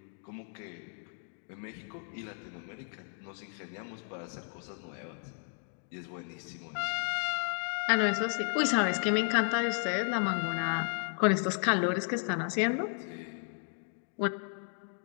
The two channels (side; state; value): right; silent; 55 dB below the other